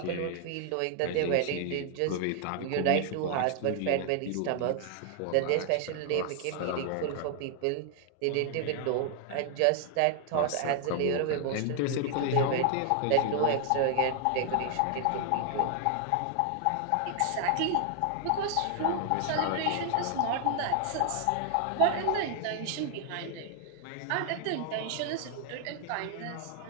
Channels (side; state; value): both; different; correlation 0.00